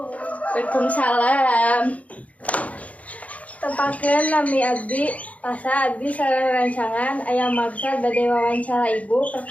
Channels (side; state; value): right; late; 0.068 ms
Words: Tepakeun nami abdi asa abdi sareng rancangan aya maksud bade wawancara ibu